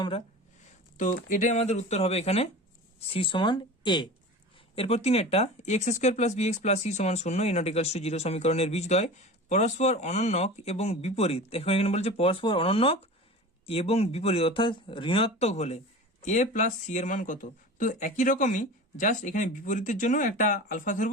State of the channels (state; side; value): normal; both; correlation 0.34